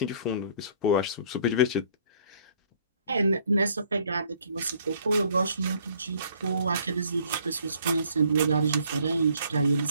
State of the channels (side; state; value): both; inverted; correlation -0.60